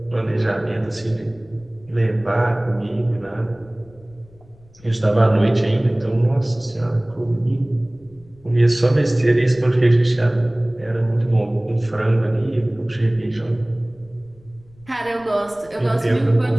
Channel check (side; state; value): left; noise; rumble, 26 dB below the sound